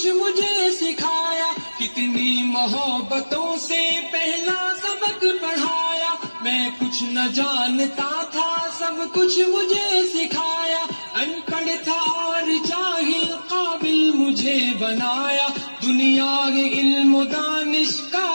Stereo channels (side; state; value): both; inverted; correlation -1.00